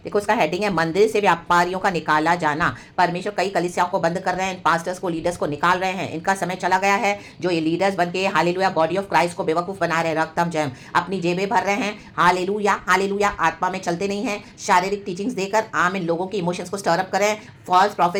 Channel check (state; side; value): identical; both; correlation 1.00